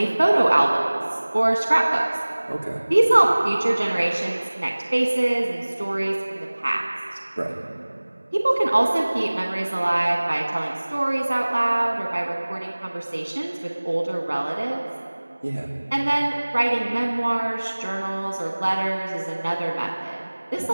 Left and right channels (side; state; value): both; inverted; correlation -1.00